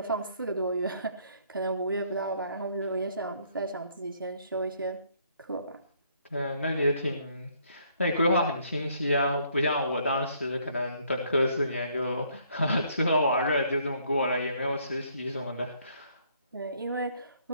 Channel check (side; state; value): both; inverted; correlation -0.66